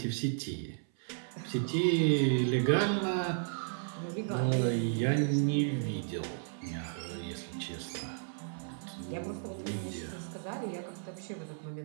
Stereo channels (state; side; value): silent; left; 55 dB below the other